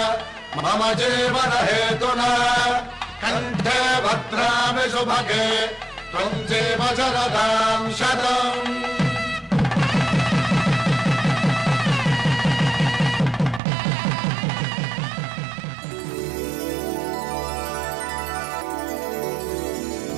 మమ జీవన హేతునా కంఠే భద్రామి శుభగే త్వం జీవ శరదాం శతం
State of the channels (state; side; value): drops out; left; at 13.6 s